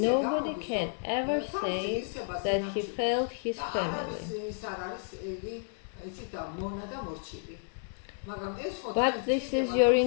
nobody can ever say that he failed his family. But this is your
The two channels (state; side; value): silent; right; digital silence